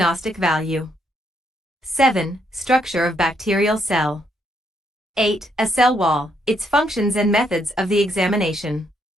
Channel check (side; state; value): both; normal; correlation 0.74